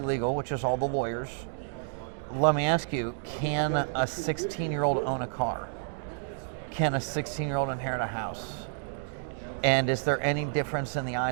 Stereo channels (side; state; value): left; silent; digital silence